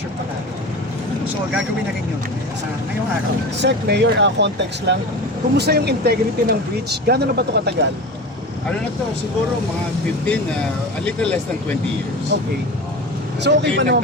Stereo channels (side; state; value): both; normal; correlation 0.30